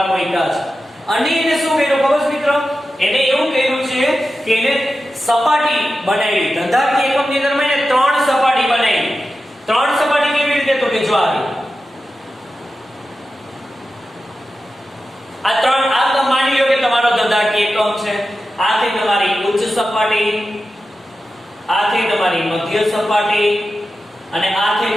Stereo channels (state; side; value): normal; both; correlation 0.92